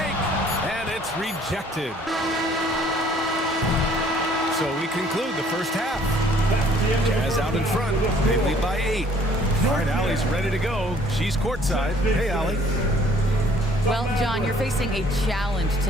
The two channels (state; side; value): normal; both; correlation 0.58